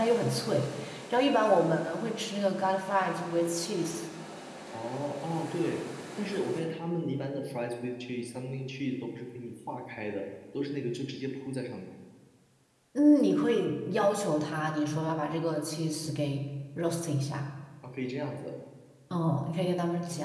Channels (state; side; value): identical; both; correlation 1.00